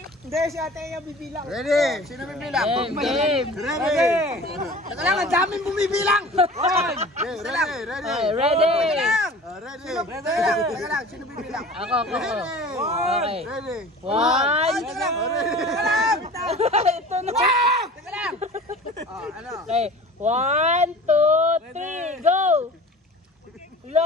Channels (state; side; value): normal; both; correlation 0.41